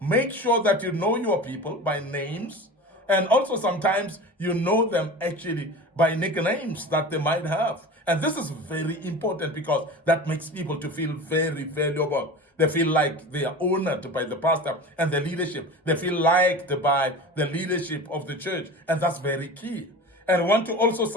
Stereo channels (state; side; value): normal; both; correlation 0.33